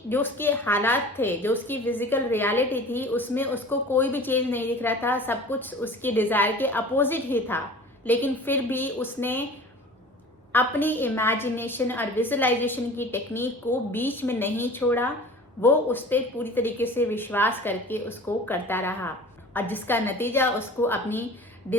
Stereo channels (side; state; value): both; normal; correlation 0.41